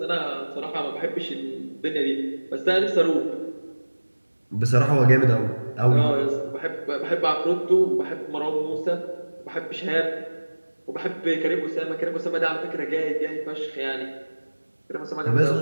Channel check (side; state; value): both; inverted; correlation -1.00